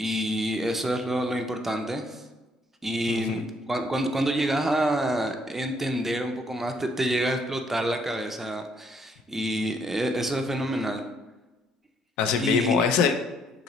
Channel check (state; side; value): normal; both; correlation 0.68